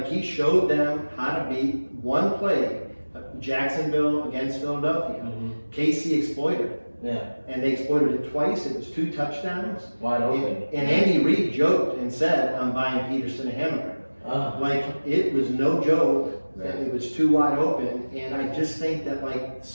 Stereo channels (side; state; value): both; inverted; correlation -1.00